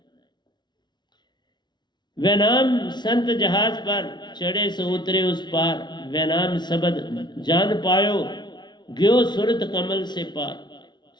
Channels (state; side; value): late; right; 0.21 ms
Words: वह नाम संत जहाज पर चढ़े सो उतरे उस पार, वह नाम शब्द जान पायो गयो सुरत कमल से पार।